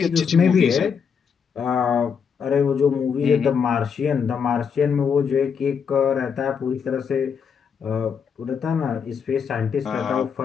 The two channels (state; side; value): quieter; right; 6.7 dB